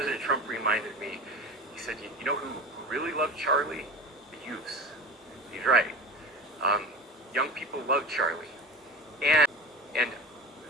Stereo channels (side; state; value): both; normal; correlation 0.31